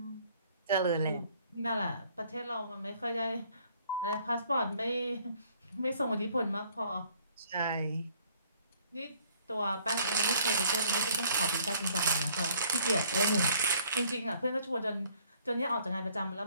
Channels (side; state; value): both; inverted; correlation -0.61